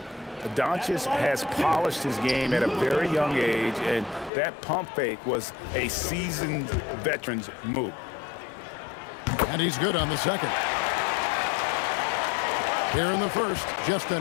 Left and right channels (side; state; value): right; drops out; at 4.3 s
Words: Doncic has polished his game at a very young age, and that pump fake was a seasoned veteran's move. And he's good on the second. Here in the first, just